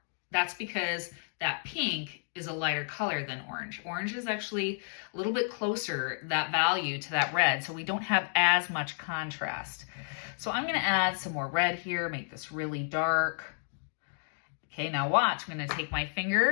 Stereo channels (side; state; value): right; silent; digital silence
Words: That's because that pink is a lighter color than orange. Orange is actually a little bit closer, that value, to that red, so we don't have as much contrast. So I'm gonna add some more red here, make this really dark. Okay, now watch, I'm gonna take my